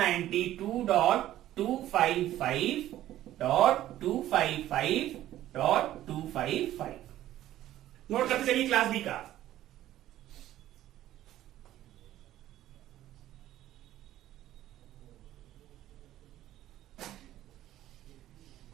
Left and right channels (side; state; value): left; quieter; 13.5 dB